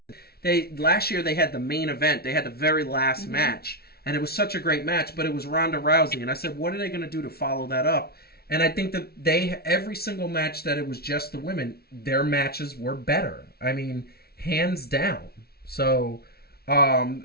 Last year, they had the main event. They had the very last match. And it was such a great match, but it was Ronda Rousey. And I said, what are they going to do to follow that up? And I think that every single match that it was just the women, their matches were better. I mean, hands down. So...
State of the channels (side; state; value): right; late; 0.45 ms